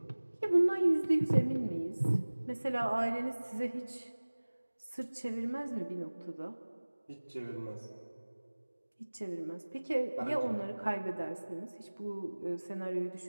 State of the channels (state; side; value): inverted; both; correlation -1.00